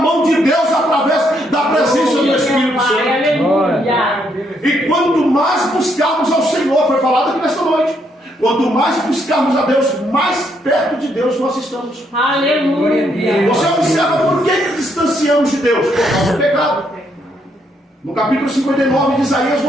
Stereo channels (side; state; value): both; normal; correlation 0.74